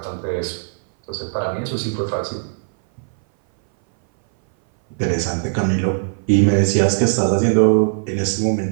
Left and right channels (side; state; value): left; silent; 60 dB below the other